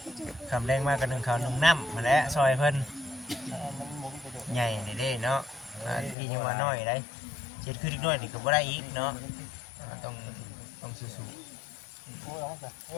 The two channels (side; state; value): right; drops out; at 6.2 s